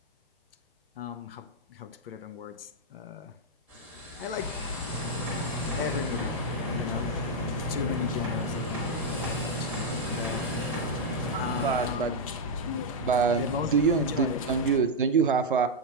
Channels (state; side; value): normal; both; correlation -0.01